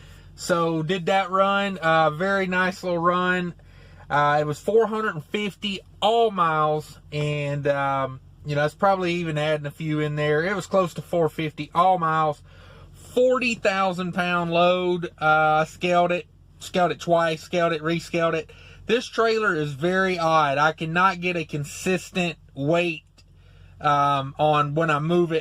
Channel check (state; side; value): identical; both; correlation 1.00